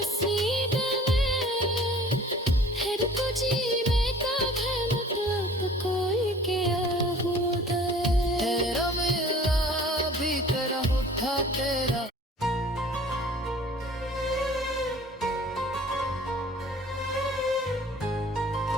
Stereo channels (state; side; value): normal; both; correlation 0.48